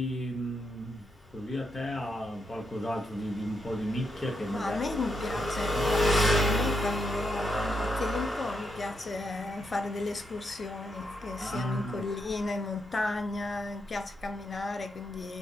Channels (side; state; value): both; normal; correlation 0.81